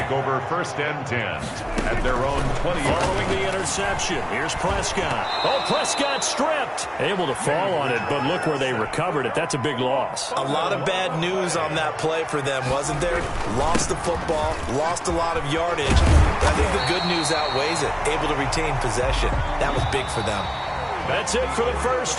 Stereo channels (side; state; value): both; identical; correlation 1.00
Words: over 1st and 10 at their own 20. Following the interception, here's Prescott. Oh, Prescott stripped. Able to fall on it, but look where they recovered it. That's a big loss. A lot of bad news on that play for them, wasn't there? Lost the football, lost a lot of yardage. But I think the good news outweighs it. Able to retain possession. That was big for them. That's it for the first